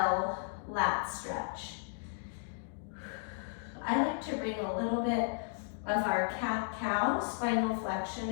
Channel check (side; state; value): right; silent; 55 dB below the other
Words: lat stretch. I like to bring a little bit of our cat-cow spinal flexion